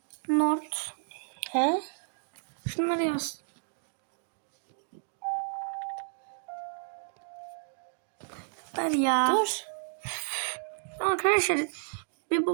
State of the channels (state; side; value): silent; left; digital silence